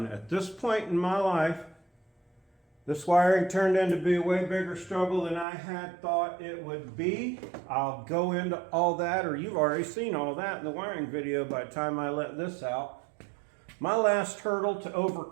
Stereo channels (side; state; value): left; drops out; at 5.5 s